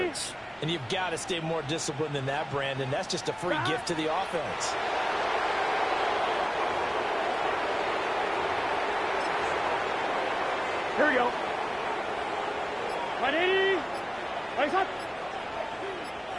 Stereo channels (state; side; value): identical; both; correlation 1.00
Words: And you've got to stay more disciplined than that, Brandon. That's just a free gift to the offense. Here we go. Right 80. Right shot.